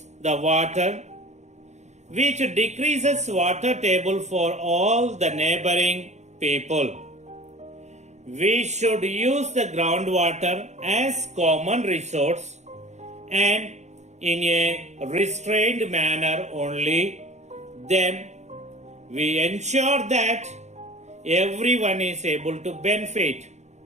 the water, which decreases water table for all the neighboring people. We should use the groundwater as common resource and in a restrained manner only. Then we ensure that everyone is able to benefit.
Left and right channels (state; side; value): late; left; 0.33 ms